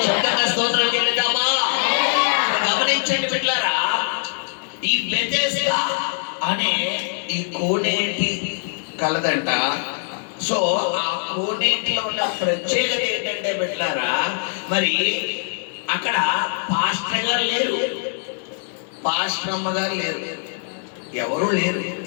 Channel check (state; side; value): silent; right; 64 dB below the other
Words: శబ్దంగా స్తోత్రం చెల్లిద్దామా? గమనించండి బిడ్డలారా, ఈ బెతెస్దా అనే ఈ కోనేటి కలదంట. సో ఆ కోనేటిలో ఉన్న ప్రత్యేకత ఏంటంటే బిడ్డలారా, మరి అక్కడ పాస్టర్ గారు లేరు, పాస్టర్ అమ్మ గారు లేరు, ఎవరు లేరు.